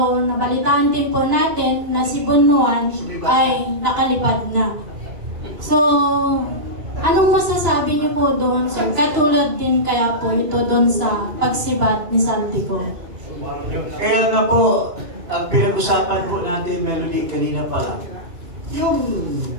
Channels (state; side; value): late; left; 2.9 ms